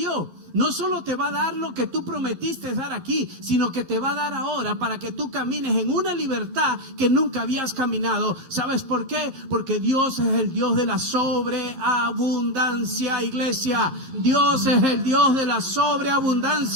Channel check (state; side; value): late; left; 11 ms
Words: No solo te va a dar lo que tú prometiste dar aquí, sino que te va a dar ahora para que tú camines en una libertad que nunca habías caminado. ¿Sabes por qué? Porque Dios es el Dios de la sobreabundancia, iglesia. Dios es el Dios de la